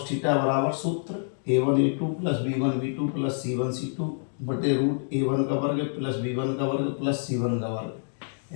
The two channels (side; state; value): right; silent; digital silence